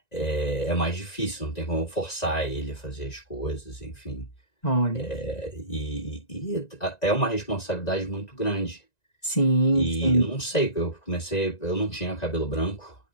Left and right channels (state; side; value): late; right; 1.9 ms